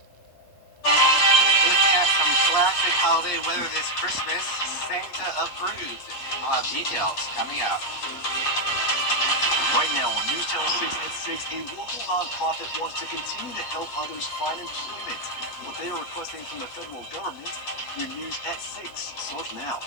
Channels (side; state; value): right; late; 8.4 ms